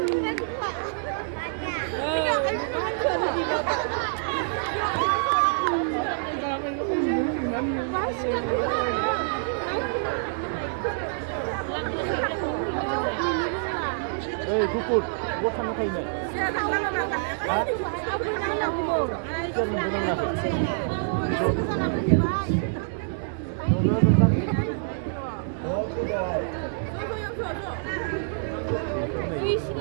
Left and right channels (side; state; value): left; silent; digital silence